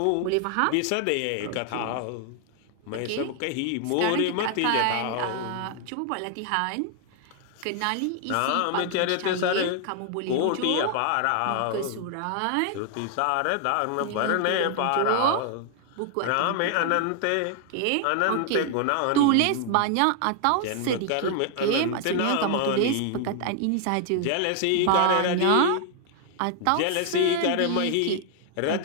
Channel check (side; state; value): both; different; correlation 0.00